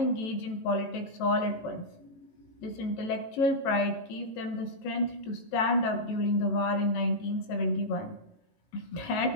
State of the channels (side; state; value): right; late; 18 ms